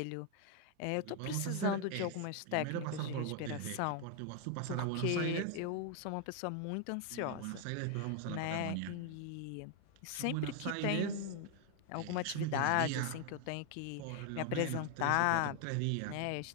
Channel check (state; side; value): different; both; correlation 0.00